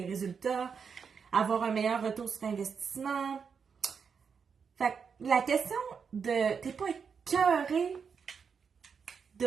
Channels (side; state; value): left; quieter; 6.2 dB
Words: résultats, avoir un meilleur retour sur investissement. Fait que la question de t'es pas écœuré